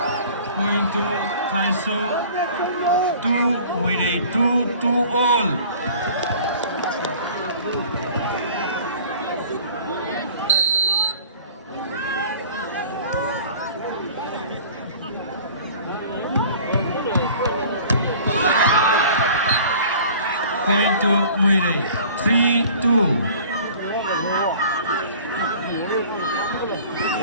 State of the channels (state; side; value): inverted; both; correlation -0.46